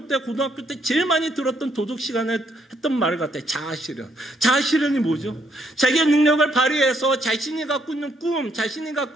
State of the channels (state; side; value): normal; both; correlation 0.73